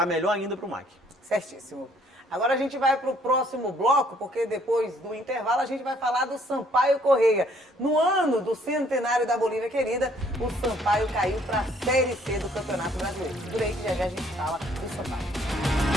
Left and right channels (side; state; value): both; normal; correlation 0.63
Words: melhor ainda para o MAC. Certíssimo. Agora a gente vai para o próximo bloco, porque depois do intervalo a gente vai falar do Sampaio Correia. No ano do centenário da Bolívia querida, o Sampaio caiu para a Série C do Campeonato Brasileiro. Por aí que já a gente fala do Sampaio.